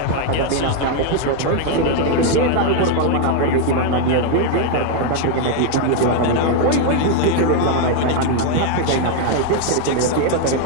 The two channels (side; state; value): both; different; correlation 0.00